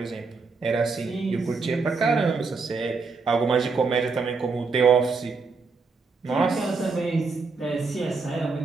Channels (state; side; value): quieter; left; 4.4 dB